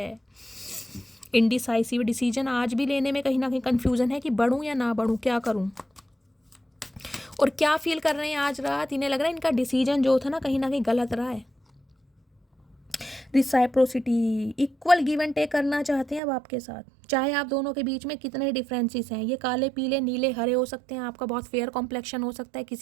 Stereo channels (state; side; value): drops out; left; at 16.2 s